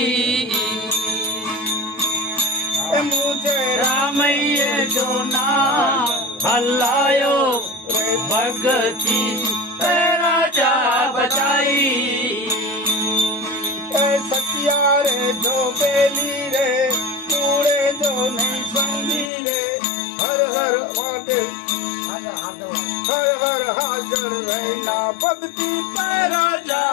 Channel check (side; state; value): right; drops out; at 19.3 s